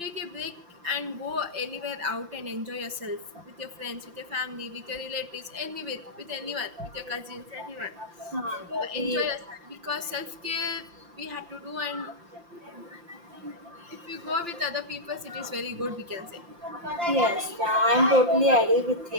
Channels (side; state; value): left; late; 5.8 ms